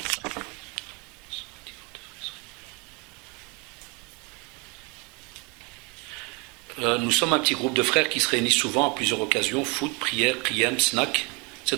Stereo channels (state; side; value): quieter; left; 29.1 dB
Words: Nous sommes un petit groupe de frères qui se réunissent souvent à plusieurs occasions, foot, prière, qiyam, snack. C'est